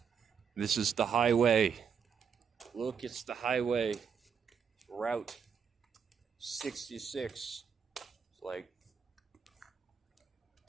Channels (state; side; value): quieter; left; 6.7 dB